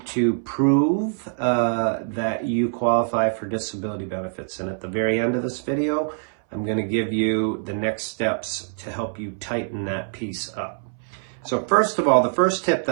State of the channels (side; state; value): left; silent; 60 dB below the other